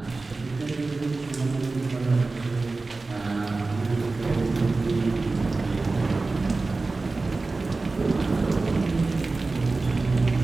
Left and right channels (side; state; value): left; quieter; 3.6 dB